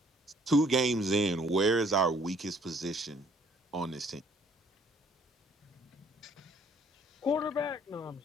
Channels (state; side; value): normal; both; correlation 0.61